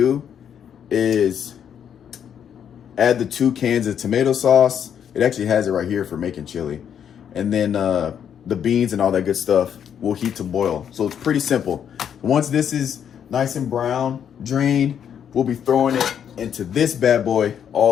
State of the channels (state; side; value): quieter; right; 8.6 dB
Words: is add the 2 cans of tomato sauce. It actually has it right here for making chili. And then the beans and all that good stuff will heat to boil. So it's pretty simple. Once this is nice and brown, drained, we'll be throwing it into this bad boy.